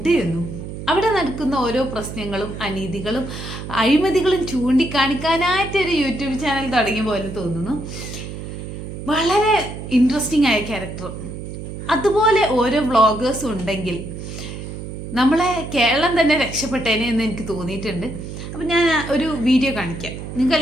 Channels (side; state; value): right; noise; hum, 9 dB below the sound